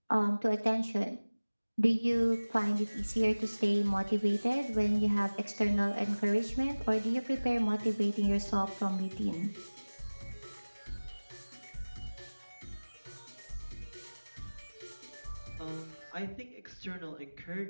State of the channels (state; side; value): inverted; both; correlation -1.00